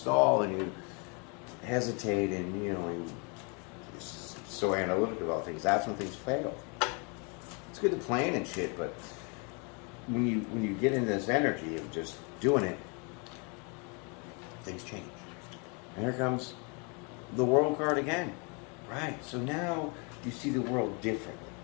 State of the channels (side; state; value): right; quieter; 33.8 dB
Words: and you hesitate and, you know, you're so analytical about things, that's when things fail. It's good to plan and shit, but when you get into this energy of just doing it, things change. And here comes the World card again. Right, so now you see the world differently.